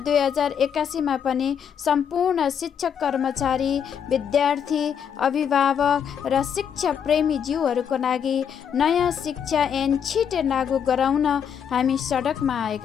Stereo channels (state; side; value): quieter; right; 7.9 dB